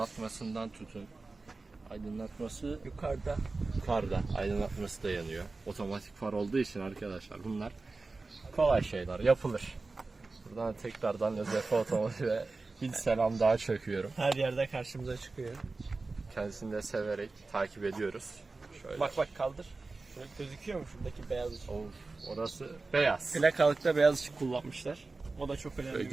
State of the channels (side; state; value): left; quieter; 3.6 dB